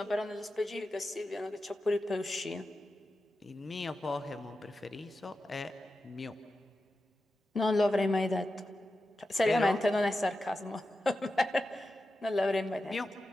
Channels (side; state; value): both; normal; correlation 0.92